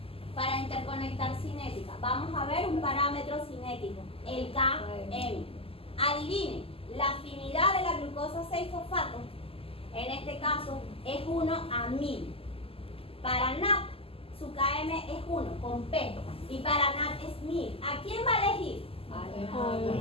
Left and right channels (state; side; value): late; right; 0.27 ms